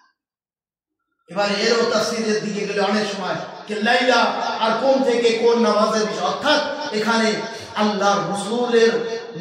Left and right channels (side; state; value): both; identical; correlation 1.00